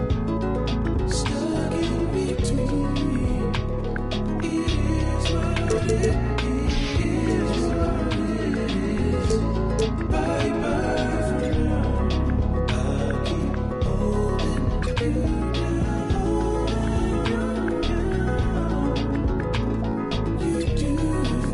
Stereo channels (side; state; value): both; identical; correlation 1.00